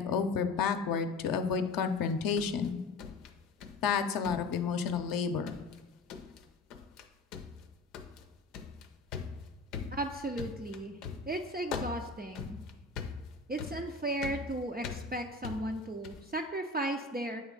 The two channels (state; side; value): quieter; right; 3.5 dB